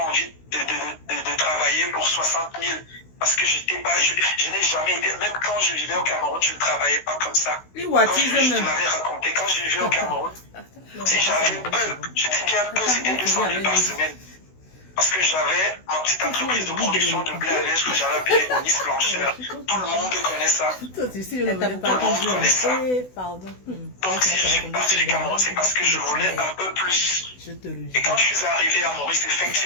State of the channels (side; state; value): right; late; 16 ms